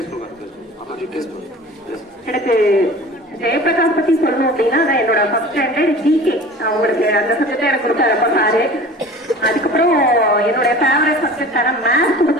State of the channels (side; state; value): both; normal; correlation 0.41